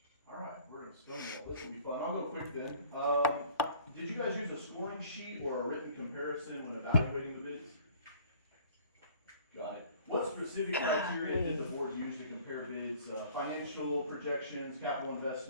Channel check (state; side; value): inverted; both; correlation -0.52